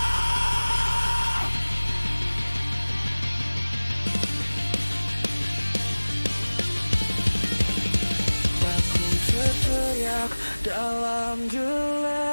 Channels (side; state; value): both; inverted; correlation -1.00